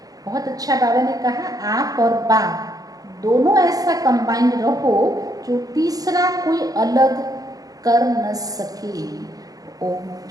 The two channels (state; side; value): late; left; 0.18 ms